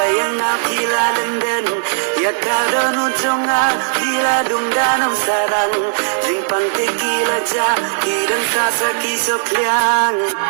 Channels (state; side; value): silent; left; 60 dB below the other